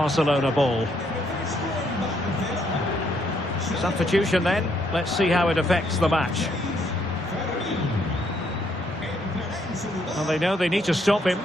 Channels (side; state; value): both; normal; correlation 0.72